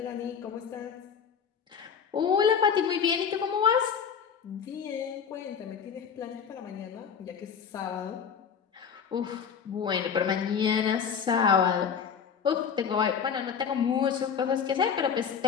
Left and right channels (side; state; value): right; quieter; 7.1 dB